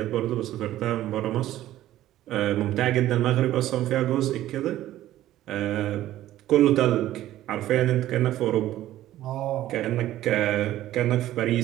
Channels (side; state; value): left; quieter; 14.0 dB